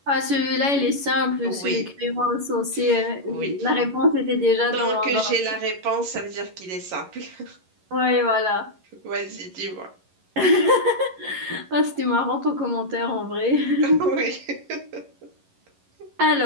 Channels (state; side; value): late; left; 11 ms